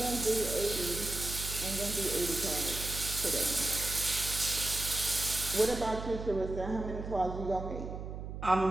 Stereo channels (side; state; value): right; noise; hum, 7 dB below the sound